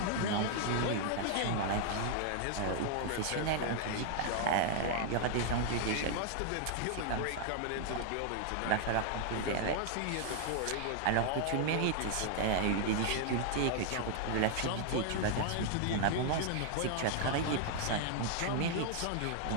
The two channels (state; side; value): different; both; correlation 0.00